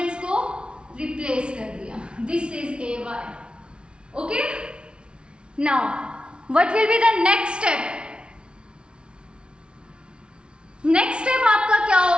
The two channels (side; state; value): left; late; 0.057 ms